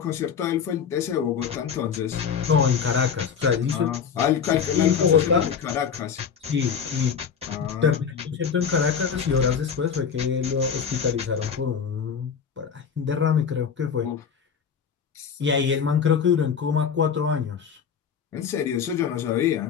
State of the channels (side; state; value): right; quieter; 7.0 dB